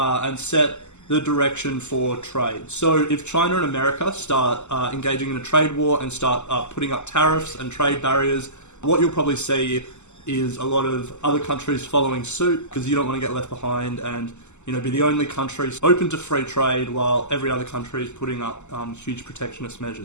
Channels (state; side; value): late; right; 0.83 ms